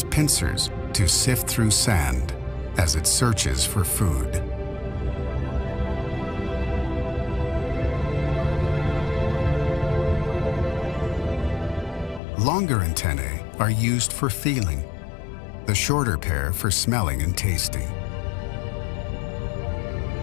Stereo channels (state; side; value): drops out; right; at 12.2 s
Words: pincers to sift through sand as it searches for food. Longer antennae are used for feeling, the shorter pair for smelling and tasting.